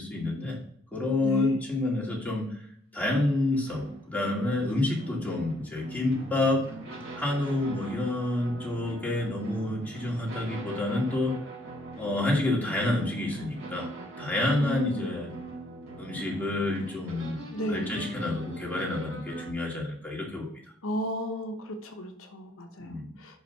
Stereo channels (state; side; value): normal; both; correlation 0.68